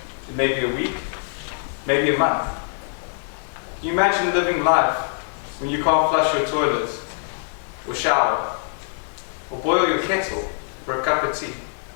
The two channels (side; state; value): right; silent; 63 dB below the other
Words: it may be a week, maybe a month. Can you imagine living life when you can't flush your toilet, or shower, or boil your kettle for a cup of tea?